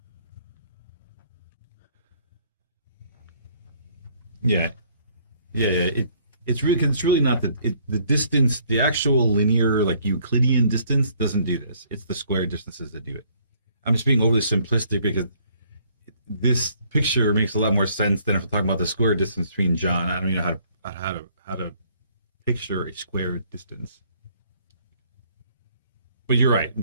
Yeah. Yeah. It's really not the distance, the actual linear, like Euclidean distance doesn't do this. It's the square distances that do it. I'm just being overly simplistic because this picture makes a lot more sense than if we're talking about the square distance between John. I don't even know how to picture a square distance. But you're right.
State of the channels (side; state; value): both; inverted; correlation -0.63